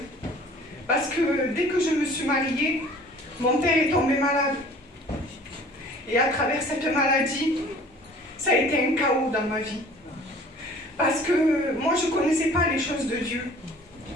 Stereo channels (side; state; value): both; normal; correlation 0.49